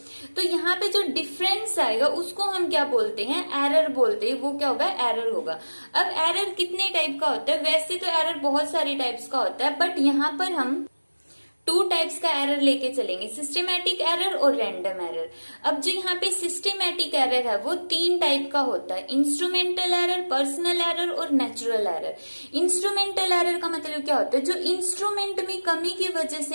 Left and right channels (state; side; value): inverted; both; correlation -1.00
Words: तो यहाँ पे जो डिफरेंस आएगा उसको हम क्या बोलते हैं, एरर बोलते हैं। वो क्या होगा, एरर होगा। अब एरर कितने टाइप का होता है? वैसे तो एरर बहुत सारे टाइप्स का होता है, बट यहाँ पर हम टू टाइप्स का एरर लेके चलेंगे, सिस्टेमैटिक एरर और रैंडम एरर। अब जो यहाँ पे सिस्टेमैटिक एरर है वो तीन टाइप का होता है, इंस्ट्रूमेंटल एरर, पर्सनल एरर और नेचुरल एरर। इंस्ट्रूमेंटल एरर का मतलब क्या होता है, जो इंस्ट्रूमेंट में कमी की वजह